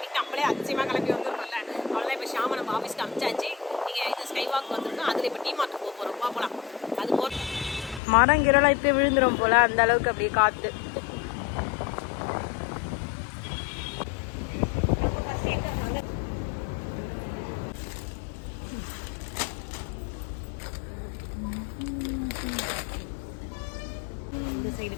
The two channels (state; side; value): drops out; right; at 8.0 s